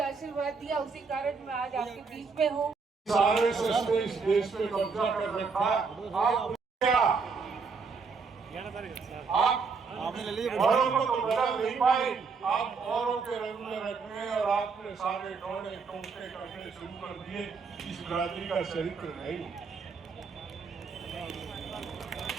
आशीर्वाद दिया, उसी कारण मैं आज आपके बीच में हूँ। आरएसएस ने इस देश पे कब्जा कर रखा। आप क्या आप औरों को तो बदल नहीं पाए, आप औरों के रंग में रखने और आपने सारे टोने टोटे करने शुरू कर दिए। इस बिरादरी का चरित्र नहीं।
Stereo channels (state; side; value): quieter; left; 5.0 dB